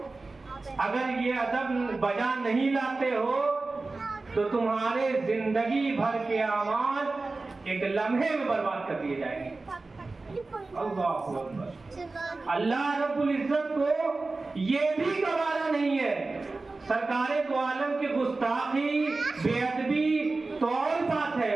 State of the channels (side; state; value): left; quieter; 3.5 dB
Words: اگر یہ ادب بجا نہیں لاتے ہو تو تمہارے زندگی بھر کے اعمال ایک لمحے میں برباد کر دیے جائیں گے۔ اللہ اکبر۔ اللہ رب العزت کو یہ بھی گوارا نہیں ہے۔ سرکار دو عالم کی گستاخی، بے ادبی تو اور بات ہے،